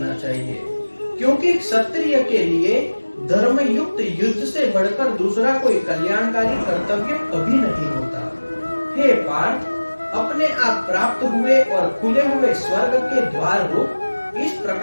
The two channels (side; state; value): both; inverted; correlation -1.00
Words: चाहिए, क्योंकि क्षत्रिय के लिए धर्म युक्त युद्ध से बढ़कर दूसरा कोई कल्याणकारी कर्तव्य कभी नहीं होता। हे पार्थ, अपने आप प्राप्त हुए और खुले हुए स्वर्ग के द्वार रूप इस